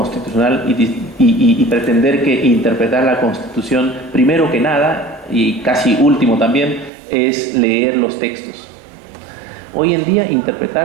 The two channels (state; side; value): drops out; left; at 6.9 s